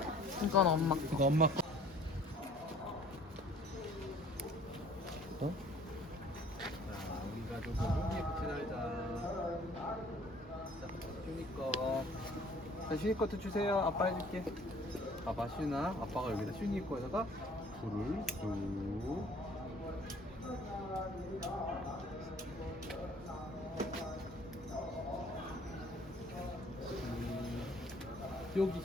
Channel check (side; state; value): both; normal; correlation 0.54